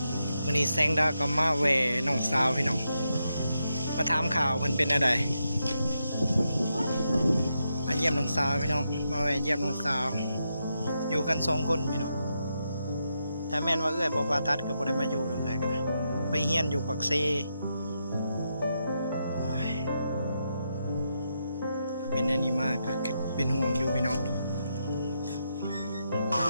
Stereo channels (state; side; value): inverted; both; correlation -0.83